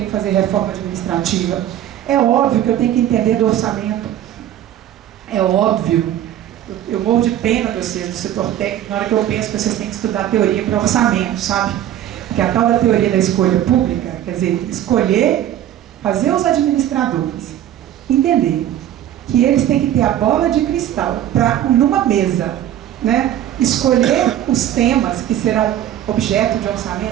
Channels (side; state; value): left; quieter; 11.7 dB